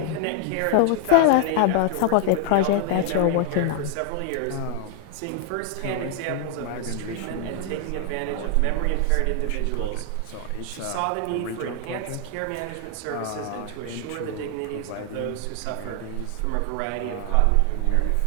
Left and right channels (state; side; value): different; both; correlation 0.00